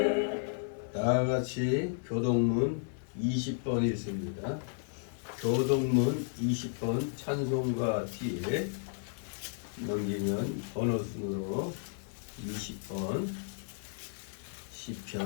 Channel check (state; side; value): silent; right; 56 dB below the other